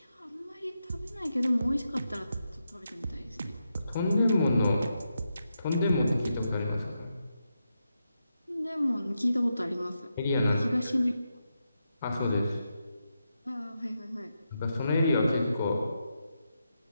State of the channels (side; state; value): both; inverted; correlation -0.85